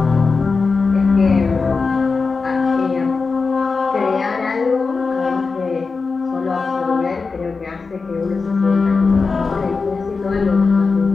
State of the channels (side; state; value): right; quieter; 4.5 dB